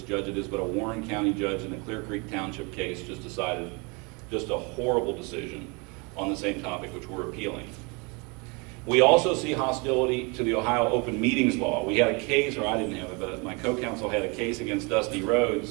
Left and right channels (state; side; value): quieter; left; 30.0 dB